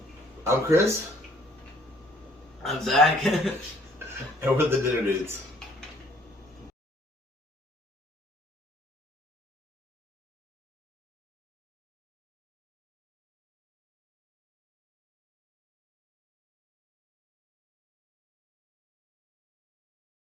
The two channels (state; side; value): normal; both; correlation 0.61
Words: I'm Chris. I'm Zach. And we're the Dinner Dudes.